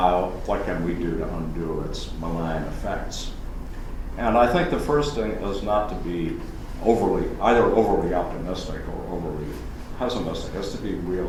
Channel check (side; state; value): both; identical; correlation 1.00